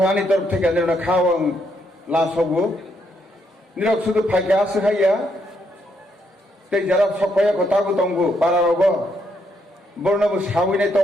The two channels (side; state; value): both; normal; correlation 0.76